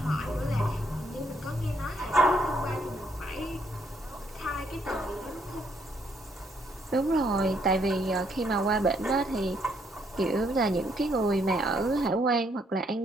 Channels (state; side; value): normal; both; correlation 0.71